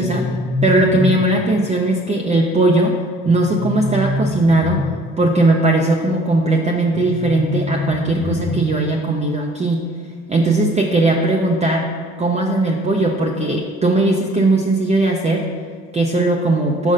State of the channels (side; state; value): both; normal; correlation 0.56